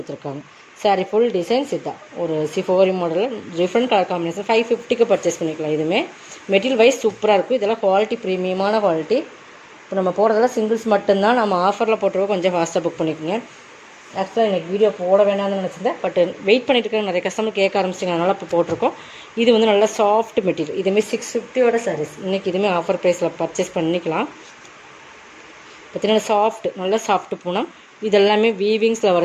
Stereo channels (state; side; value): identical; both; correlation 1.00